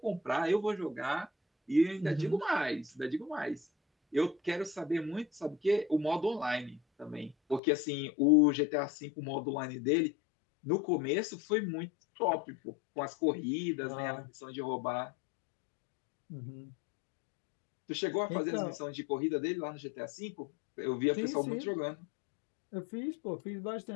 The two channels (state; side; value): drops out; right; at 7.6 s